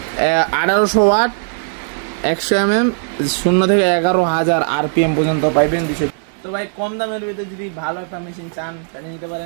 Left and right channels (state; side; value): silent; left; digital silence